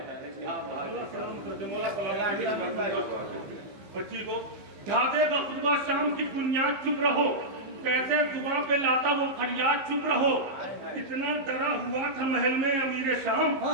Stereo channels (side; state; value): left; late; 15 ms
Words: बच्ची को ढादे का खुतबा शाम की बुनियाद चुप रहो, कैसे जुबान पे लाता वो फरियाद चुप रहो। इतना डरा हुआ था महल में अमीर शाम,